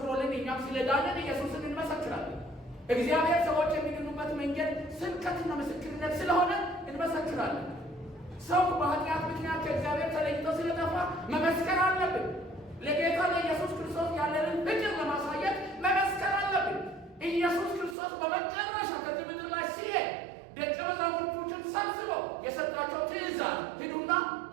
እኛም ስለዳንን ኢየሱስን እንመሰክራለን። እግዚአብሔር ሰዎች የሚድኑበት መንገድ ስብከትና ምስክርነት ስለሆነ እንመሰክራለን። ሰው በኃጢአት ምክንያት ከእግዚአብሔር ተለይቶ ስለጠፋ መመስከር አለብን። ለጌታ ለኢየሱስ ክርስቶስ ያለንን ፍቅር ለማሳየት መመስከር አለብን። ኢየሱስ ክርስቶስ በመጨረሻ ከዚህ ምድር ላይ ሲሄድ ደቀ መዛሙርቶችን ሰብስበው የሰጣቸው ትእዛዝ ሂዱና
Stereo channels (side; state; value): left; drops out; at 17.9 s